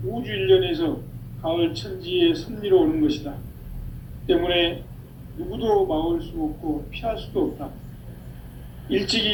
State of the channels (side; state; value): both; identical; correlation 1.00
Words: 우주 일련에서 가을 천지의 섭리로 오는 것이다. 때문에 누구도 막을 수 없고 피할 수도 없다.